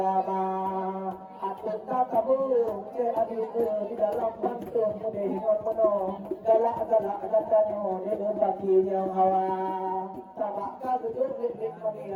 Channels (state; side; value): identical; both; correlation 1.00